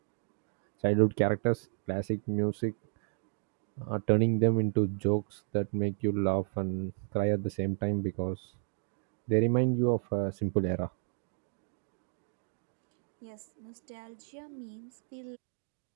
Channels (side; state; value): left; silent; 55 dB below the other